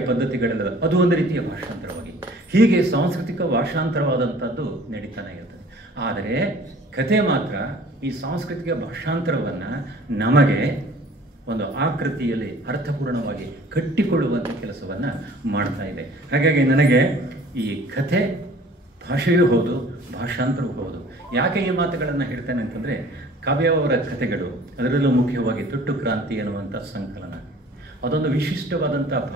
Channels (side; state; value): both; normal; correlation 0.50